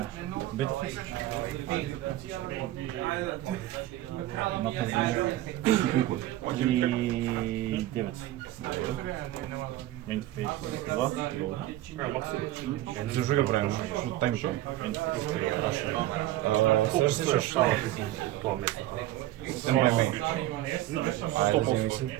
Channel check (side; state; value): left; quieter; 14.9 dB